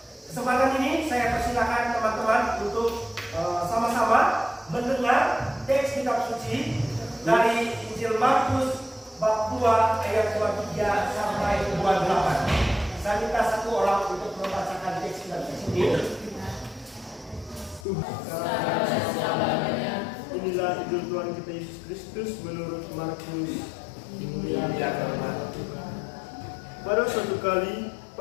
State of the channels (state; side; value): drops out; right; at 17.9 s